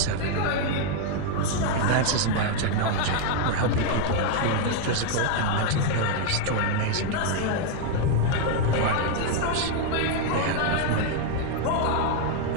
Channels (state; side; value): different; both; correlation 0.01